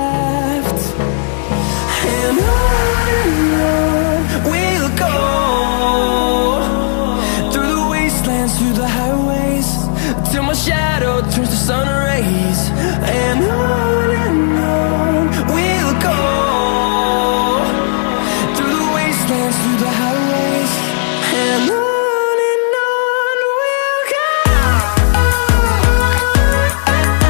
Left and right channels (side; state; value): right; silent; 71 dB below the other